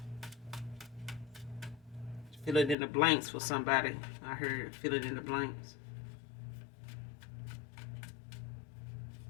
Fill it in the blanks for somebody. I heard fill it in the blanks.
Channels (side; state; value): right; drops out; at 2.8 s